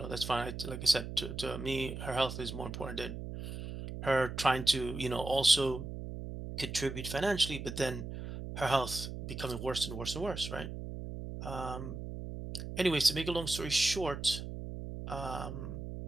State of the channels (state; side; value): noise; right; hum, 7 dB below the sound